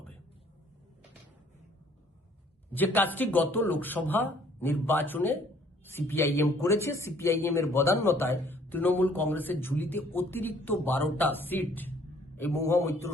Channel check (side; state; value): both; normal; correlation 0.59